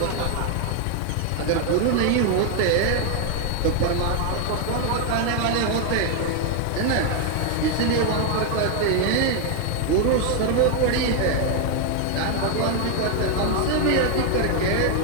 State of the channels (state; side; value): different; both; correlation 0.00